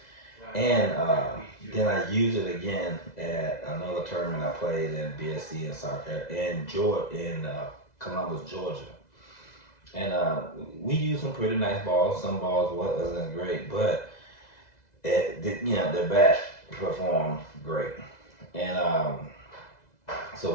And then I used it again at another tournament I played in BSC in South Carolina, in Columbus, Georgia. And we used some pretty nice balls. Some balls wasn't great, but the bat performed great. And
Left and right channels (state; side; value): late; right; 2.0 ms